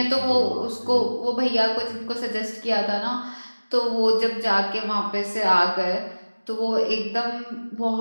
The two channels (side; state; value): both; inverted; correlation -1.00